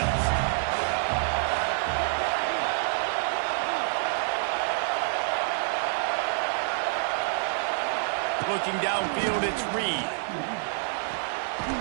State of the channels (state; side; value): silent; left; digital silence